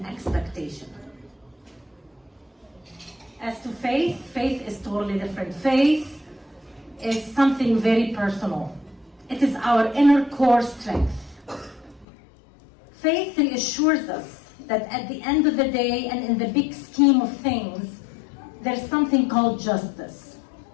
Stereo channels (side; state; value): right; drops out; at 12.1 s